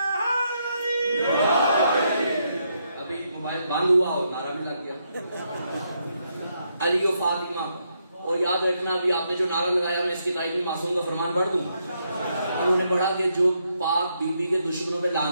ابھی موبائل بند ہوا ہو، نعرہ بھی لگ گیا. علی و فاطمہ، اور یاد رکھنا بھی آپ نے جو نعرہ لگایا، میں اس کی تائید میں معصوم کا فرمان پڑھ دوں. انہوں نے پڑھا کہ جو پاک بی بی کے دشمنوں پہ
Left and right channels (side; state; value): both; inverted; correlation -0.78